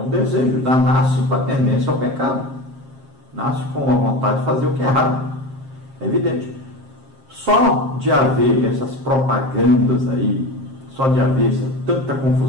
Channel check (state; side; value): late; left; 7.5 ms